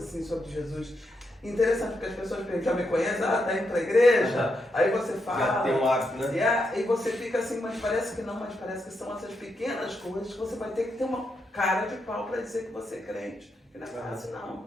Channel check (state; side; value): normal; both; correlation 0.82